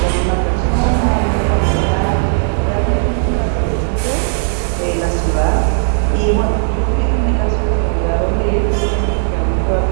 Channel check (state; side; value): silent; left; 65 dB below the other